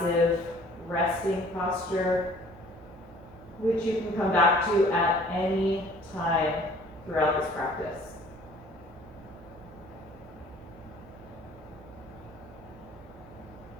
resting posture, which you can come back to at any time throughout this practice.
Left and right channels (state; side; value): noise; right; hum, 20 dB below the sound